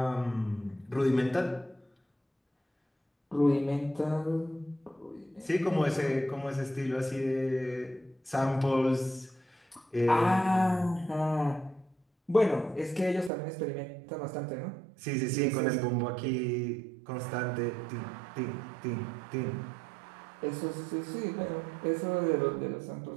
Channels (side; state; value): left; drops out; at 13.3 s